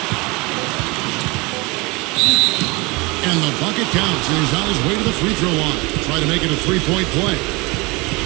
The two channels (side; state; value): left; quieter; 25.5 dB